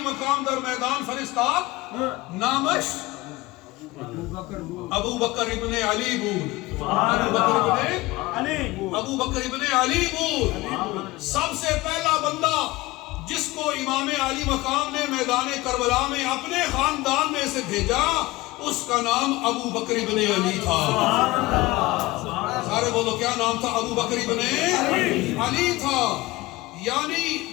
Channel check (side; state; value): right; quieter; 20.2 dB